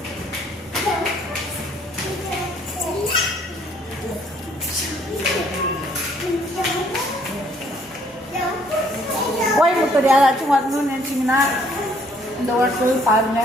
கோயம்புத்தூர் யாராச்சும் வரணும்னு நினச்சிங்கன்னா இந்த ஹோட்டல்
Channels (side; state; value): both; normal; correlation 0.63